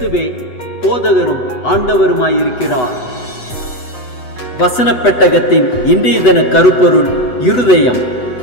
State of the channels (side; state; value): right; late; 8.0 ms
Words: போதகரும் ஆண்டவருமாயிருக்கிறார். வசனப் பெட்டகத்தின் இன்றைய தின கருப்பொருள் இருதயம்.